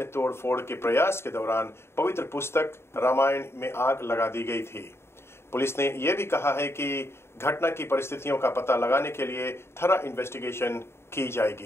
तोड़फोड़ के प्रयास के दौरान पवित्र पुस्तक रामायण में आग लगा दी गई थी। पुलिस ने यह भी कहा है कि घटना की परिस्थितियों का पता लगाने के लिए थरा इन्वेस्टिगेशन की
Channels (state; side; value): late; right; 0.12 ms